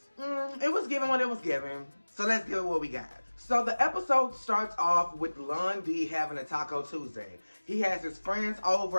it was given what it was given, so let's give it what we got. So the episode starts off with Lon D having a Taco Tuesday. He has his friends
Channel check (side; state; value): both; inverted; correlation -1.00